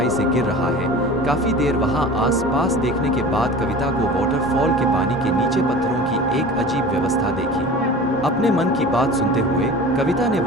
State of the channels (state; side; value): normal; both; correlation 0.38